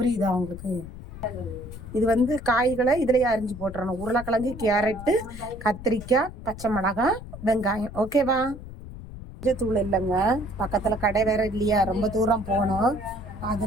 உங்களுக்கு? இது வந்து காய்களை இதுலேயே அரிஞ்சு போட்டுறணும். உருளைக்கிழங்கு, கேரட்டு, கத்திரிக்காய், பச்சை மிளகாய், வெங்காயம். ஓகேவா? தூள் இல்லைங்க, பக்கத்தில் கடை வேற இல்லையா, ரொம்ப தூரம் போகணும்.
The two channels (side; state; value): left; noise; rumble, 12 dB below the sound